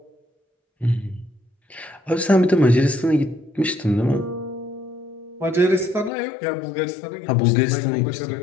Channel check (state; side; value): drops out; right; at 6.1 s